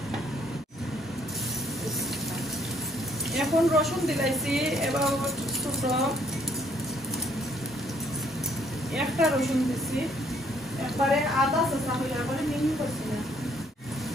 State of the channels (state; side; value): normal; both; correlation 0.66